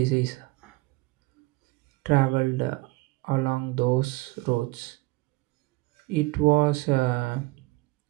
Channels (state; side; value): quieter; left; 21.9 dB